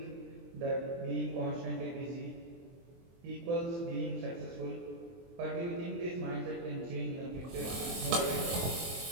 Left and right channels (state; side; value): late; left; 23 ms